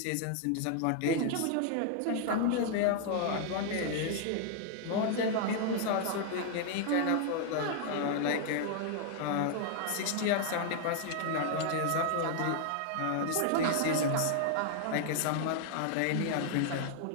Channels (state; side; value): different; both; correlation 0.00